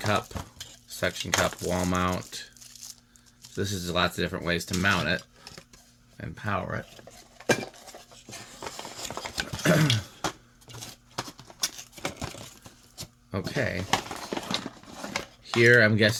wall mount. So this is lots of different ways to mount it and power it. Okay. Here, I'm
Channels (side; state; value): both; identical; correlation 1.00